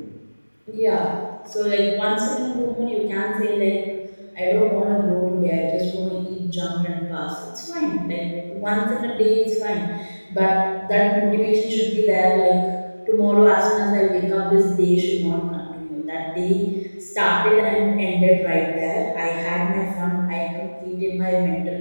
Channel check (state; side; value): inverted; both; correlation -1.00